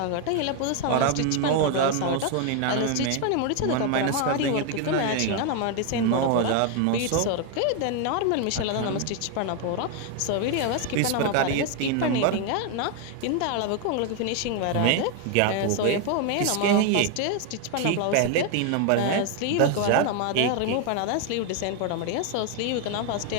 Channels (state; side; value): different; both; correlation 0.01